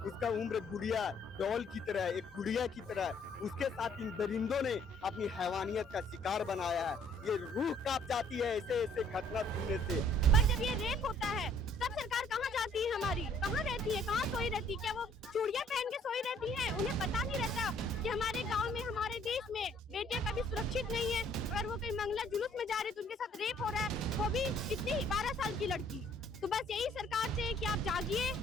उसका उम्र गुड़िया डॉल की तरह है, एक गुड़िया की तरह है। उसके साथ इन दरिंदों ने अपनी हैवानियत का शिकार बनाया है। ये रूह कांप जाती है ऐसे ऐसे घटना सुनने से। पर जब ये रेप होता है तब सरकार कहाँ जाती है हमारी? कहाँ रहती है? कहाँ सोई रहती है? क्या वो चूड़ियाँ पहन के सोई रहती है? उन्हें पता नहीं रहता कि हमारे गांव में, हमारे देश में बेटियां कभी सुरक्षित नहीं है। अगर वो कहीं मंगला जुलूस में जा रही तो उनके साथ रेप हो रहा है, वो भी कितनी 12 साल की लड़की। तो बस यही सरकार से कि आप जागिए,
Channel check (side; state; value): both; normal; correlation 0.61